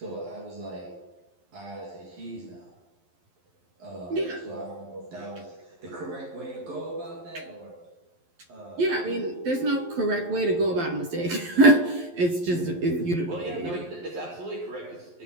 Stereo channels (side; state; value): left; late; 11 ms